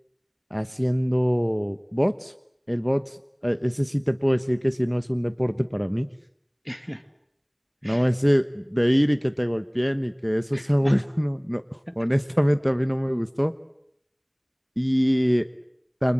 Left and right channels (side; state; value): both; identical; correlation 1.00